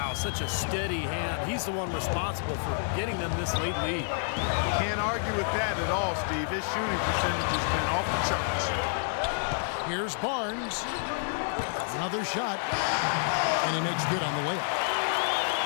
such a steady hand. He's the one responsible for getting them this late lead. Can't argue with that at all, Steve. His shooting percentage has been off the charts. Here's Barnes. Another shot. And he makes good on the layup.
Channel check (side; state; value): right; silent; 59 dB below the other